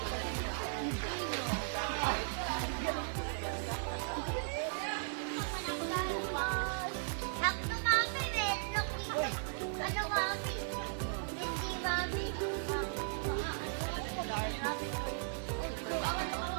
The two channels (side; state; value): left; silent; digital silence